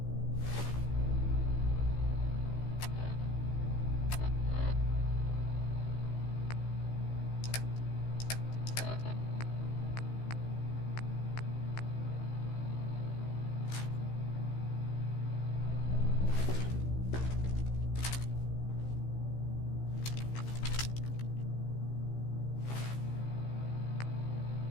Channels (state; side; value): late; right; 15 ms